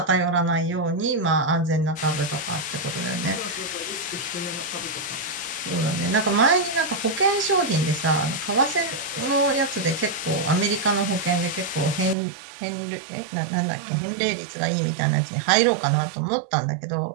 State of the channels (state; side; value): drops out; left; at 12.2 s